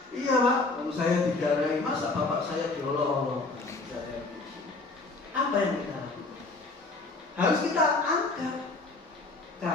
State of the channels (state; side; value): quieter; right; 3.5 dB